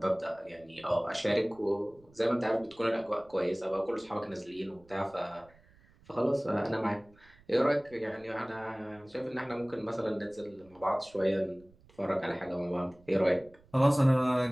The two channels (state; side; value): noise; right; rumble, 28 dB below the sound